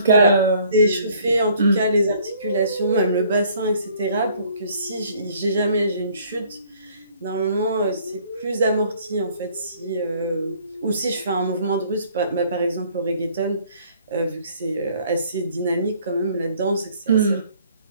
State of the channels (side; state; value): both; inverted; correlation -0.59